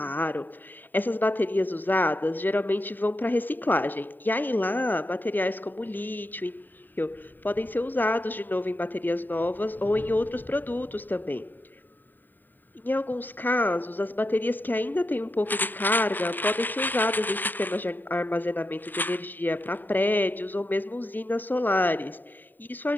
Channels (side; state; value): right; late; 0.090 ms